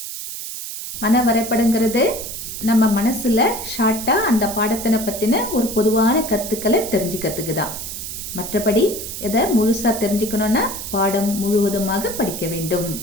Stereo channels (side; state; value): right; noise; hiss, 8 dB below the sound